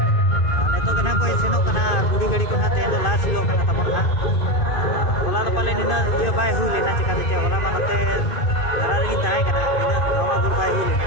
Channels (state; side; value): late; right; 2.5 ms